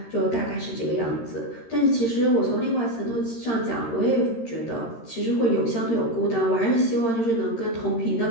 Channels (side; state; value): right; late; 13 ms